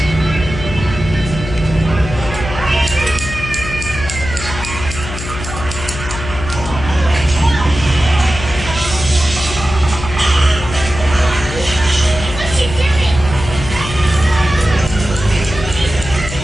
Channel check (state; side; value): noise; left; hum, 9 dB below the sound